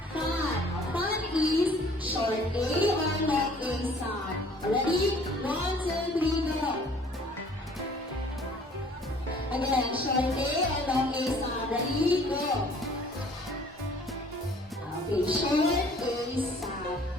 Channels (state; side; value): normal; both; correlation 0.54